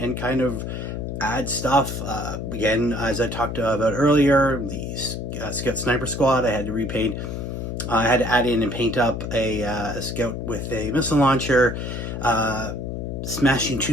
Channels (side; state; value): left; noise; hum, 5 dB below the sound